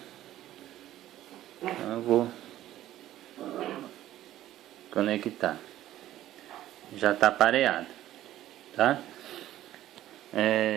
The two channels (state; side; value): quieter; left; 13.6 dB